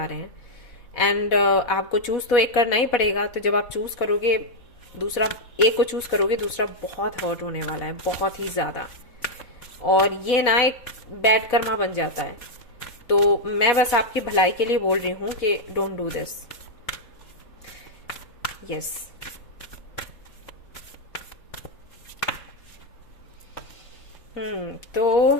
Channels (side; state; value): right; late; 4.1 ms